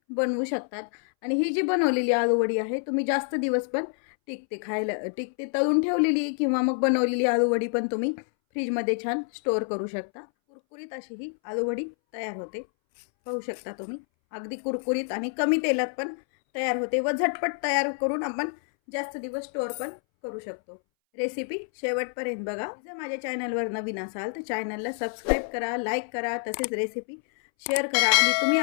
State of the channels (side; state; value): right; silent; 60 dB below the other